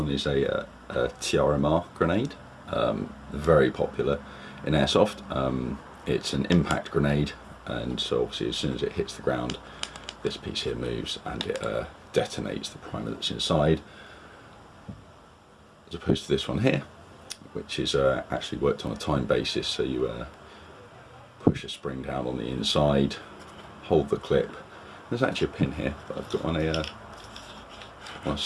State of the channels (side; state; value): both; identical; correlation 1.00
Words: is a TRMR grenade, very popular in Airsoft. It's an impact grenade, and so obviously as soon as it hits the ground, this piece here moves and it detonates the primer that's inside, as opposed to this one here, which is actually worked on a time basis. So you push a spring down on the inside, hold the clip. There's actually a pin here, but I've got on a